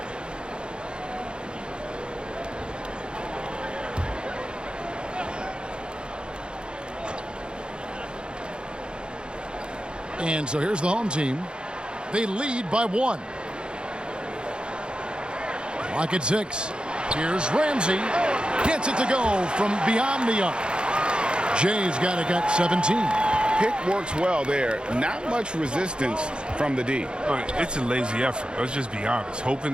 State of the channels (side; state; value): left; late; 0.052 ms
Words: And so here's the home team. They lead by 1. Clock at 6. Here's Ramsey. Gets it to go from beyond the arc. Jay's got 17. Pick works well there. Not much resistance from the D. It's a lazy effort. Let's just be honest. Hoping